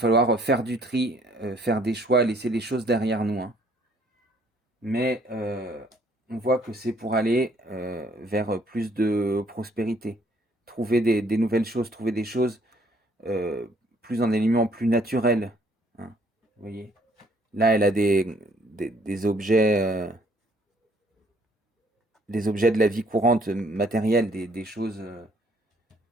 faire du tri, faire des choix, laisser les choses derrière nous, hein. Mais on voit que c'est pour aller vers plus de prospérité, trouver des nouvelles choses, trouver des choses plus en éléments plus naturels, hein. Vous voyez, là, elle a des objets de la vie courante matérielle, des choses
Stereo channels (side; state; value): both; normal; correlation 0.63